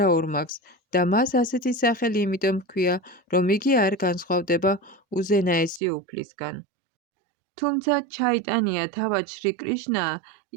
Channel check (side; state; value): left; drops out; at 5.8 s